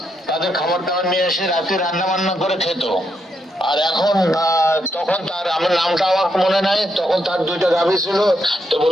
তাদের খাবার দাবার নিয়ে এসে রাতে রান্না বান্না করে খেত। আর এখন তখন তার, আমার নামটা আমার মনে নাই, তখন তার 2টা গাভী ছিল। তো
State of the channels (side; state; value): both; normal; correlation 0.79